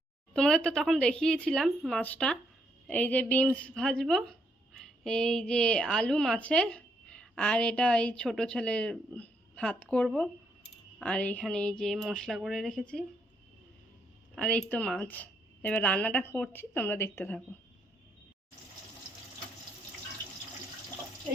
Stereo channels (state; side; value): normal; both; correlation 0.75